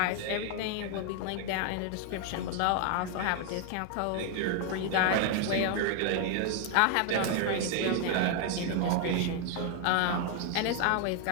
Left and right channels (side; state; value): both; different; correlation 0.00